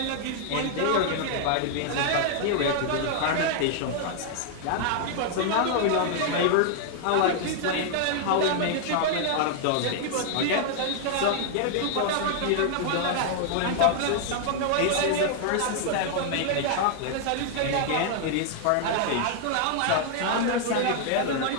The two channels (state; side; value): different; both; correlation 0.00